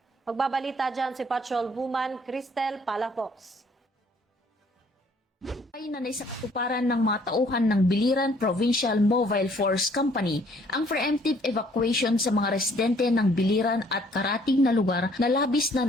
Magbabalita dyan si Patrol Woman Cristel Palafox. Ay na sa katuparan ng mga tauhan ng Biliran Provincial Mobile Force Company ang preemptive evacuation sa mga residente ng Biliran at karating na lugar na labis na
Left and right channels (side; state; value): both; normal; correlation 0.61